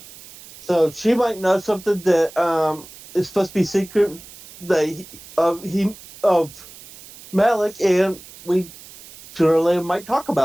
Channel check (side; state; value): right; noise; hiss, 19 dB below the sound